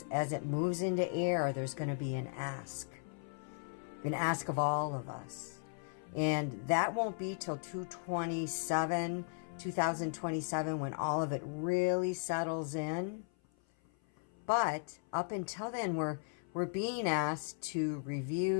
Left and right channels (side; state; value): right; silent; 53 dB below the other